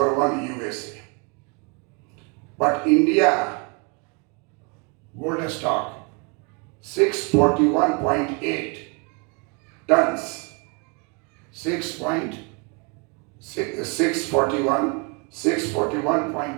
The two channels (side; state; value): left; quieter; 32.8 dB